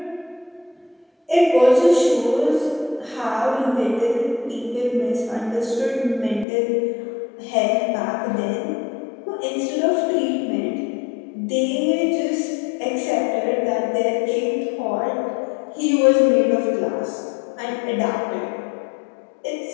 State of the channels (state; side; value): drops out; right; at 6.5 s